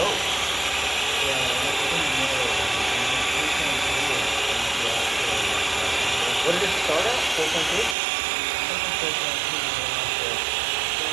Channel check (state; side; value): drops out; left; at 8.0 s